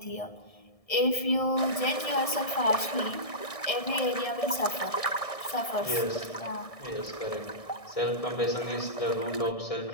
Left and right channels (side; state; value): right; late; 1.7 ms